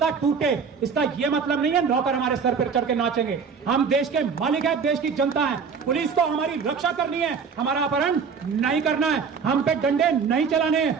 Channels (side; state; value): left; quieter; 5.9 dB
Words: टूटे। इसका यह मतलब नहीं है नौकर हमारे सर पर चढ़ के नाचेंगे। हम देश के मालिक हैं, देश की जनता है, पुलिस को हमारी रक्षा करनी है, हमारा अपहरण नहीं करना है, हम पे डंडे नहीं चलाने हैं,